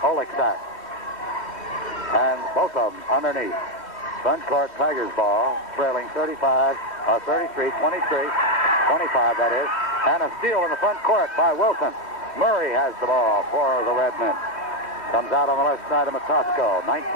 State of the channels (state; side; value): late; right; 3.1 ms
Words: Oleksak. And both of them underneath. Front court, Tigers ball, trailing 33, 23, 25 that is. And a steal in the front court by Wilson. Murray has the ball for the Redmen. Comes out on the left side of Matosco. 19